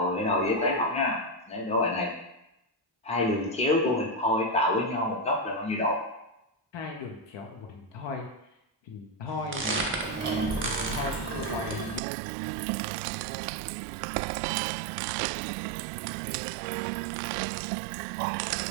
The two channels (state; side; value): drops out; left; at 12.0 s